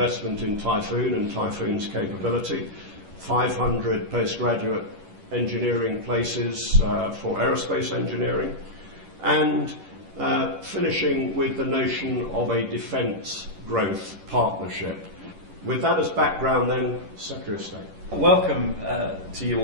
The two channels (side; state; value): left; late; 11 ms